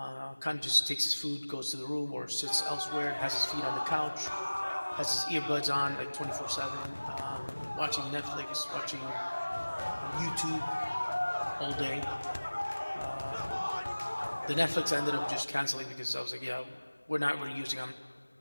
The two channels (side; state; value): both; inverted; correlation -1.00